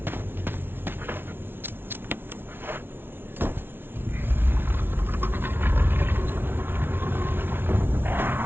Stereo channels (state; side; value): late; left; 0.11 ms